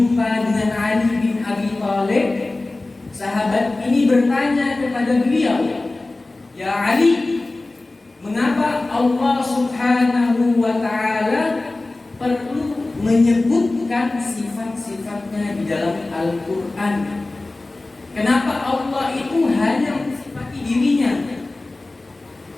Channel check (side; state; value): right; quieter; 3.0 dB